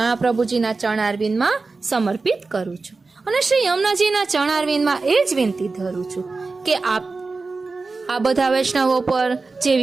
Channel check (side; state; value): left; quieter; 3.9 dB